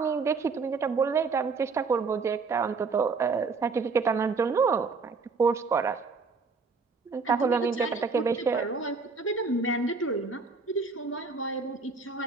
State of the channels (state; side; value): quieter; left; 4.6 dB